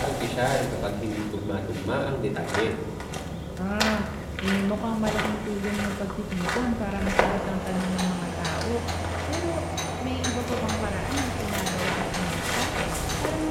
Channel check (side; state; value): both; identical; correlation 1.00